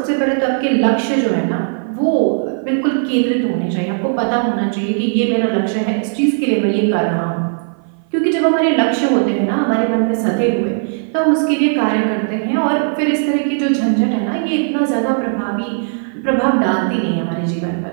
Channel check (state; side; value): silent; left; 56 dB below the other